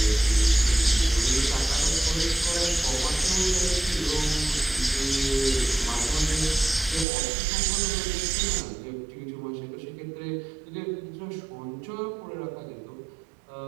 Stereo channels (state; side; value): drops out; left; at 7.1 s